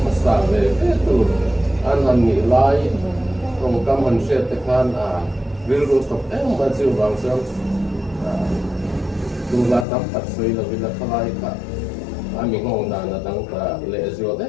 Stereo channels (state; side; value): drops out; right; at 9.9 s